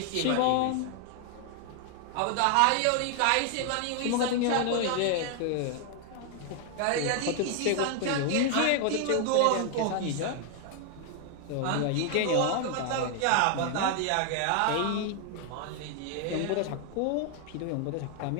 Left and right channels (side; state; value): both; different; correlation 0.00